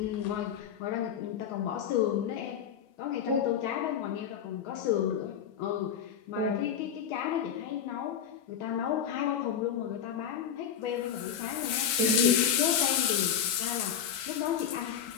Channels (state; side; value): quieter; right; 8.4 dB